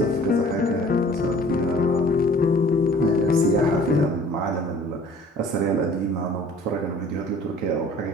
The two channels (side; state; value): both; normal; correlation 0.50